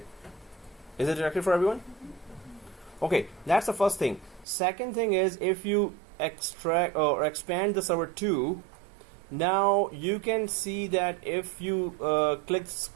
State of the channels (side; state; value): left; drops out; at 4.5 s